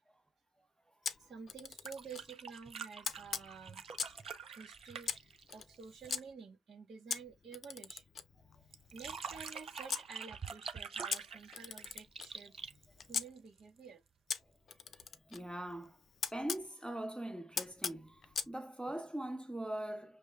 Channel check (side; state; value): both; normal; correlation 0.77